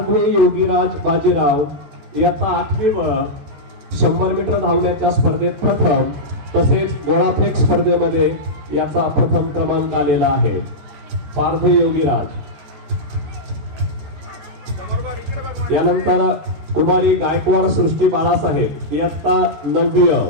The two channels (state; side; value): late; left; 13 ms